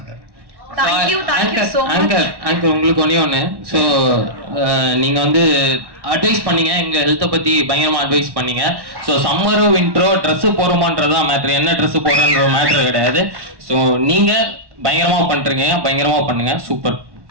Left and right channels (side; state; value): left; late; 1.1 ms